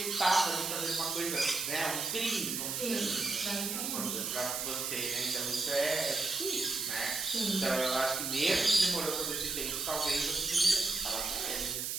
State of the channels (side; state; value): right; noise; hiss, 2 dB below the sound